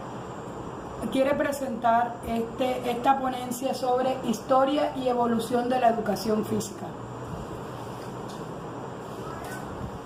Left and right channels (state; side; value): identical; both; correlation 1.00